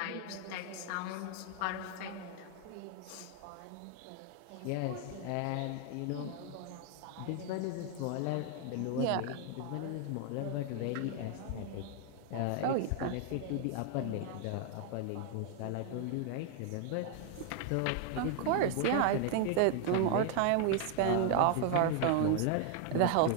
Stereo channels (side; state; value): both; different; correlation 0.00